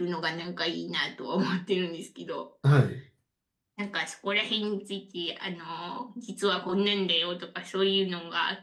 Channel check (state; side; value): identical; both; correlation 1.00